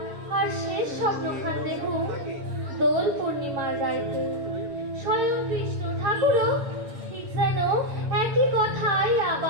শেষ স্বপ্নখান দেখু দোল পূর্ণিমার রাইতে স্বয়ং কৃষ্ণ ঠাকুরও ঠিক যেন একই কথাই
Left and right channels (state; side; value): late; left; 7.0 ms